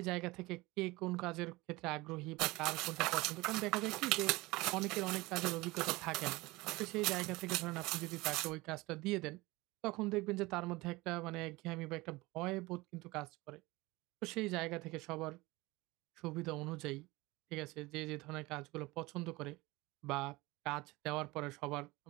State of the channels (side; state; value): left; quieter; 21.8 dB